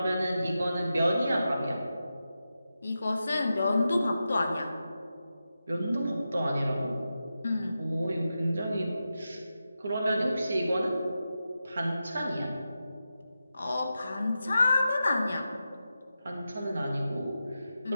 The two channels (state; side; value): inverted; both; correlation -0.90